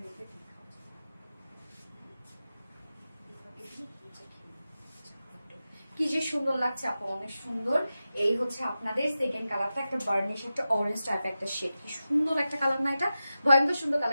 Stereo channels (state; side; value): inverted; both; correlation -0.93